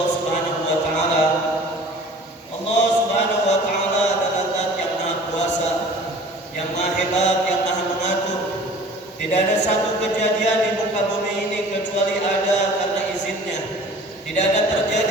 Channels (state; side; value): normal; both; correlation 0.45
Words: Subhanahu wa taala. Allah Subhanahu wa taala adalah Zat yang Maha Kuasa, yang Maha Hebat, yang Maha Mengatur. Tidak ada satu kejadian di muka bumi ini kecuali ada karena izinnya. Tidak ada